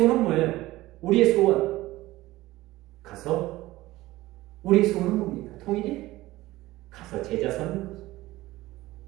뭐예요? 우리의 소원. 가서 우리의 소원은 뭡니까? 통일이? 가서 제자 삼는 거죠.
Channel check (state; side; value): quieter; left; 17.7 dB